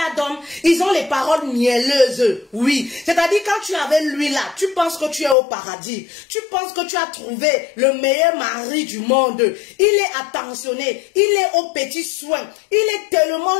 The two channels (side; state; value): right; drops out; at 5.4 s